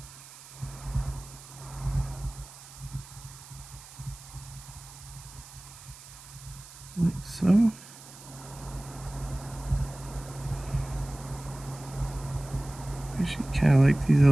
Like so. I actually kind of like these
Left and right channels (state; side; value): noise; right; hiss, 18 dB below the sound